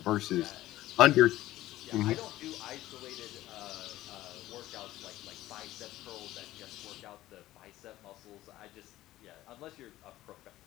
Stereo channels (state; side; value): quieter; right; 15.5 dB